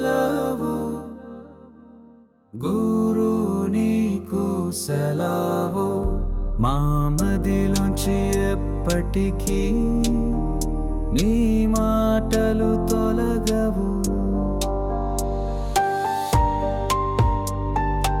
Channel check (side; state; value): both; identical; correlation 1.00